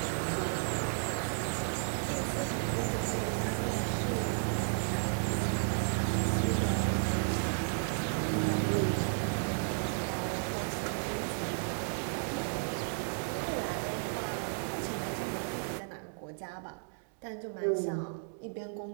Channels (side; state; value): left; silent; digital silence